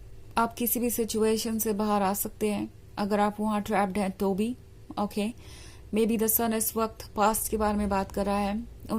आप किसी भी सिचुएशन से बाहर आ सकते हैं अगर आप वहां ट्रैप्ड हैं तो भी। ओके, मे बी द सन इस वक्त पास्ट के बारे में बात कर रहा है,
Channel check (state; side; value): identical; both; correlation 1.00